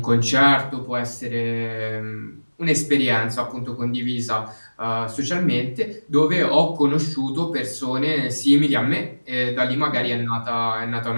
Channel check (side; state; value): both; inverted; correlation -1.00